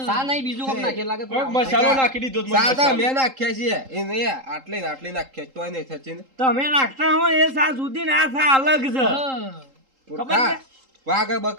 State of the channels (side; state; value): left; late; 3.8 ms